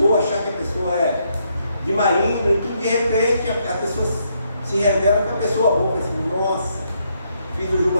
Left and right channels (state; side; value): inverted; both; correlation -0.75